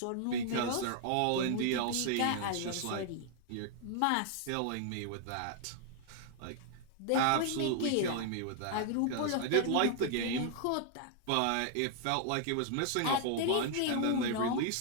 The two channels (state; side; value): different; both; correlation 0.00